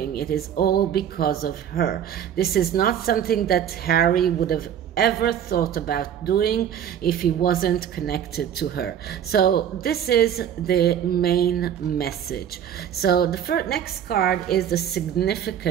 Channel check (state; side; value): quieter; left; 9.3 dB